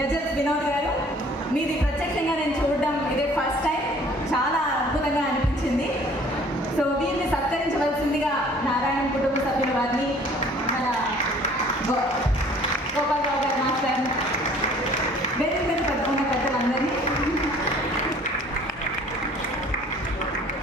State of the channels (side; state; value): both; normal; correlation 0.53